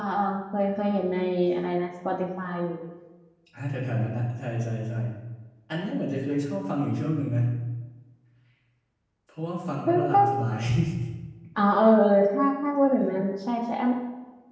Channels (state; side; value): identical; both; correlation 1.00